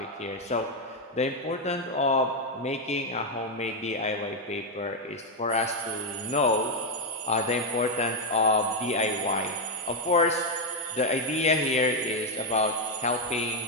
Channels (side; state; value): both; normal; correlation 0.03